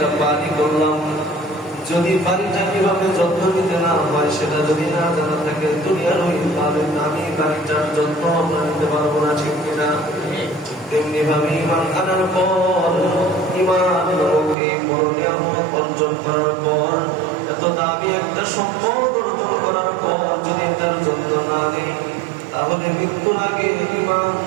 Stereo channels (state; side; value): drops out; left; at 14.6 s